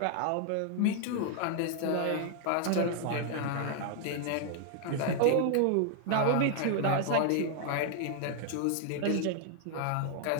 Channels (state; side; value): different; both; correlation 0.00